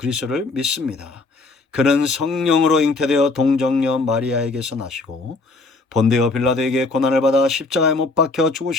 믿습니다. 그는 성령으로 잉태되어 동정녀 마리아에게서 나시고 본디오 빌라도에게 고난을 받아 십자가에 못 박혀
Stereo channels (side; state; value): right; quieter; 3.4 dB